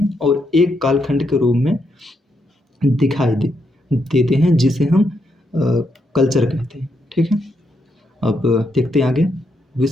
और एक कालखंड के रूप में दिखाई देते हैं, जिसे हम कल्चर कहते हैं। ठीक है, अब देखते हैं आगे।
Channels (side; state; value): both; normal; correlation 0.79